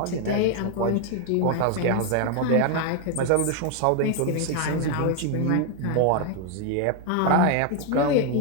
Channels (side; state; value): both; different; correlation 0.01